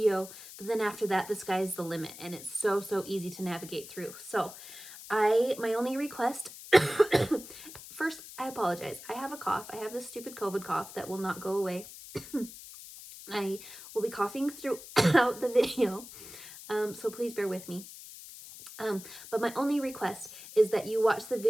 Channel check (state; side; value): noise; left; hiss, 15 dB below the sound